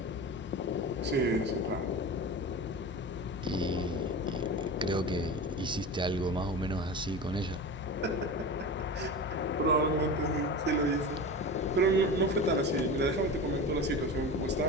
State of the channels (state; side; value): normal; both; correlation 0.29